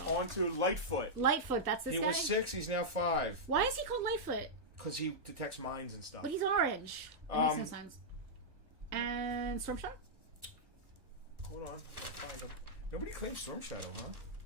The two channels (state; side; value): late; left; 1.2 ms